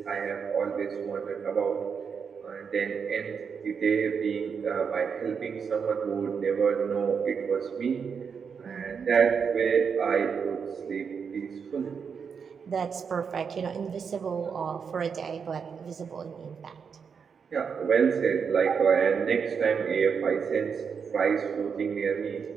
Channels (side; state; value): left; quieter; 6.3 dB